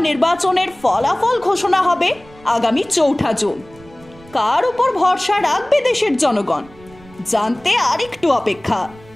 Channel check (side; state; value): right; noise; rumble, 24 dB below the sound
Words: নির্বাচনের ফলাফল ঘোষণা হবে আগামী 4 জুন। কার উপর ভরসা রাখবে দেশের জনগণ জানতে আরেকটু অপেক্ষা।